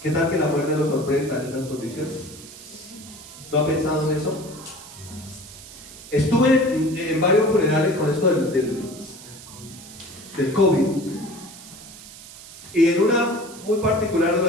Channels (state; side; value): noise; right; hiss, 17 dB below the sound